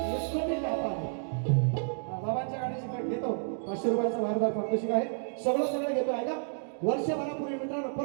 बाबांच्या गाण्याची कट घेतो 500 रुपयाचा भारदार पारितोषिक आहे सगळं घेतो ऐका वर्षभरापूर्वी मित्रांनो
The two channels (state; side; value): silent; left; digital silence